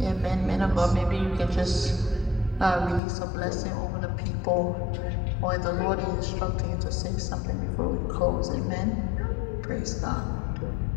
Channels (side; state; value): right; drops out; at 3.0 s